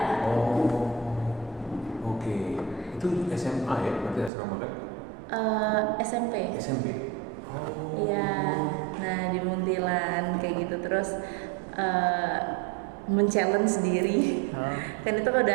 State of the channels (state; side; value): drops out; left; at 4.3 s